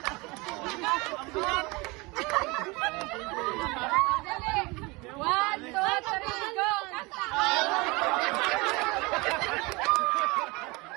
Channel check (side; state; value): left; quieter; 25.3 dB